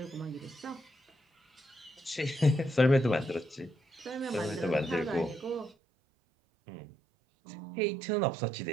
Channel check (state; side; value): drops out; left; at 5.8 s